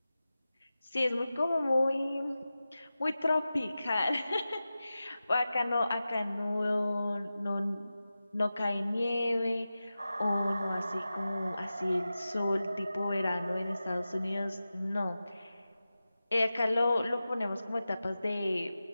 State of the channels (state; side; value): inverted; both; correlation -0.94